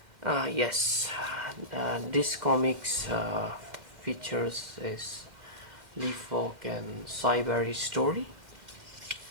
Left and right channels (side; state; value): left; late; 2.1 ms